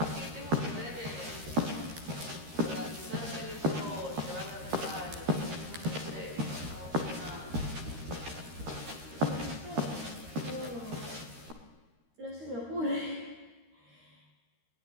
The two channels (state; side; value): late; left; 13 ms